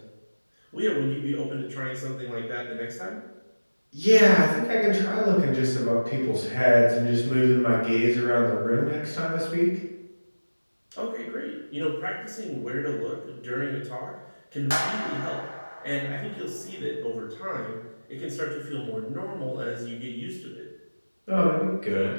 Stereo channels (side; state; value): both; inverted; correlation -1.00